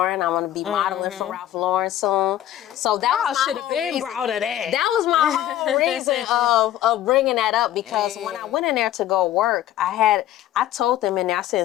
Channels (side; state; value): right; quieter; 12.6 dB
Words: I'm going to be modeling for Ralph Lauren soon. So that should have been proud of that. That was my whole reason of bringing that up because when I went in there to go work, I told them in there, I said,